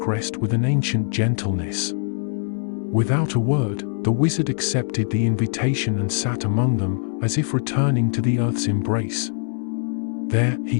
with an ancient gentleness. Without a word, the wizard accepted the invitation and sat among them, as if returning to the earth's embrace. There, he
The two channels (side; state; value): right; silent; 64 dB below the other